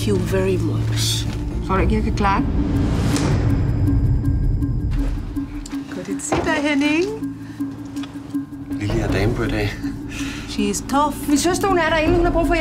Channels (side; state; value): both; identical; correlation 1.00